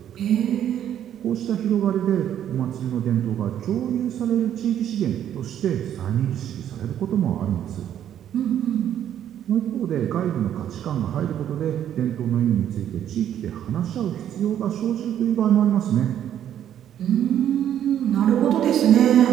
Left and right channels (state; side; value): quieter; left; 10.4 dB